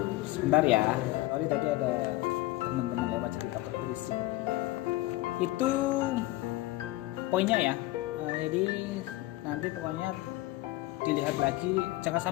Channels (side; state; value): right; quieter; 18.0 dB